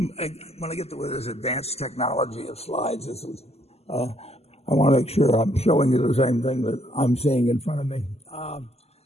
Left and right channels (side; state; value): right; late; 0.30 ms